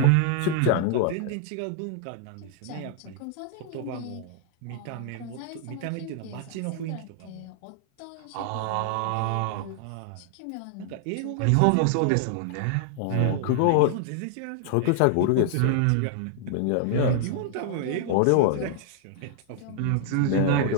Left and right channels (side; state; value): both; different; correlation -0.01